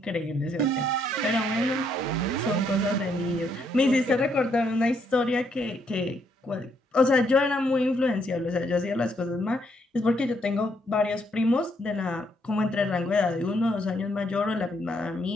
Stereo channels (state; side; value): normal; both; correlation 0.73